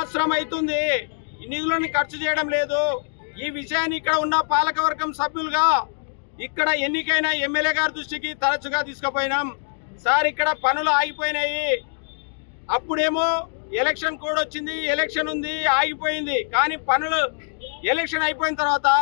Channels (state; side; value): silent; right; digital silence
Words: అవుతుంది, ఈ నిధులను ఖర్చు చేయడం లేదు. ఈ విషయాన్ని ఇక్కడ ఉన్న పాలకవర్గం సభ్యులుగా ఇక్కడ ఎన్నికైన ఎమ్మెల్యే గారి దృష్టికి తరచుగా తీసుకుపోయినాం. సార్ ఇక్కడ పనులు ఆగిపోయినాయి, అప్పుడేమో ఎలక్షన్ కోడ్ వచ్చింది, ఎలక్షన్ ఉంది, ఆగిపోయింది. కానీ పనులు ఎలక్షన్ అయిపోయిన తర్వాత